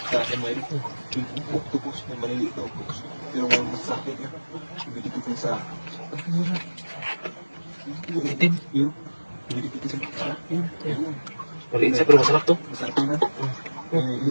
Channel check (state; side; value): inverted; both; correlation -1.00